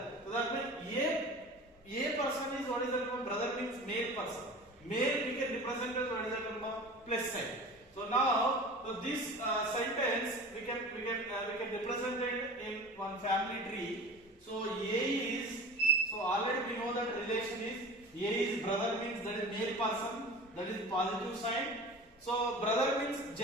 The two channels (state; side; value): normal; both; correlation 0.37